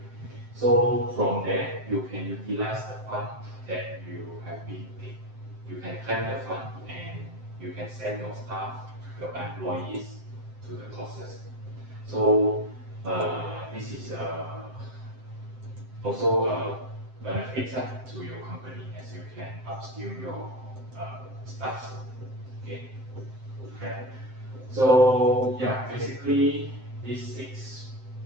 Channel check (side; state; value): left; late; 7.7 ms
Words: so from there you can utilize the fund that you have been paid. You can claim the fund and you can send your staff, your employees to the courses. So this is also benefits to your company as you can upskill your staff. Okay. Okay. So yeah, basically these six